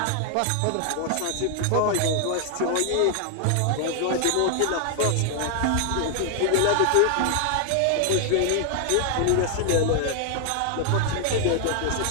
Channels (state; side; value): different; both; correlation 0.00